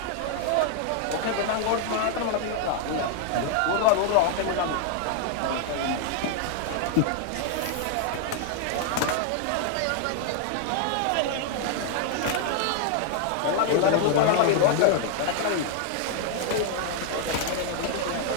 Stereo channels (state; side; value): different; both; correlation 0.00